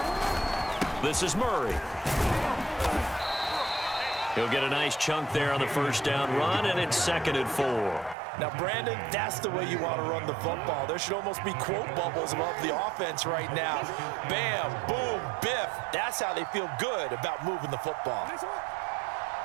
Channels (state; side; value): drops out; left; at 8.2 s